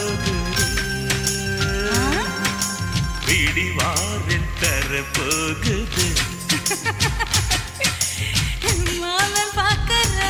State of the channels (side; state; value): both; identical; correlation 1.00